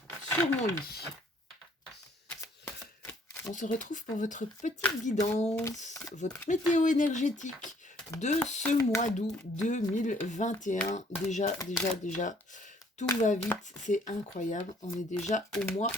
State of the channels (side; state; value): both; normal; correlation 0.62